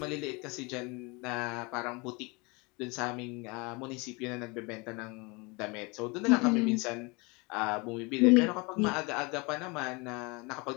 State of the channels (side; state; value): right; quieter; 27.7 dB